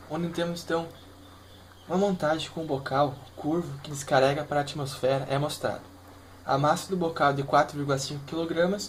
onde temos então uma montagem com um bocal curvo que descarrega para a atmosfera é mostrado. A massa do bocal é de 4,5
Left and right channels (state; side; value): identical; both; correlation 1.00